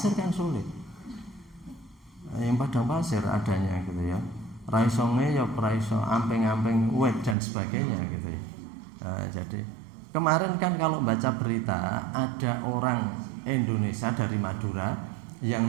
kan sulit. Yang padang pasir adanya gitu ya, raisonge ya raiso amping-amping wet dan sebagainya gitu ya. Jadi kemarin kan kalau baca berita ada orang Indonesia dari Madura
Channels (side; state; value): left; drops out; at 7.4 s